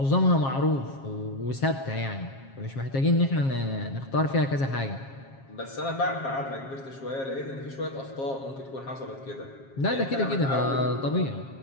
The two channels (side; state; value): right; late; 7.4 ms